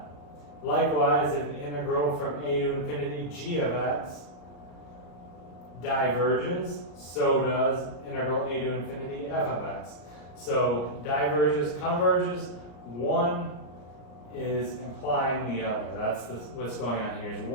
Likewise, if integral from a to infinity g of x diverges, so does integral a to infinity f of x. So diverges, converges, one is implying the other. That's what's going on here, is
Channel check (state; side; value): late; right; 34 ms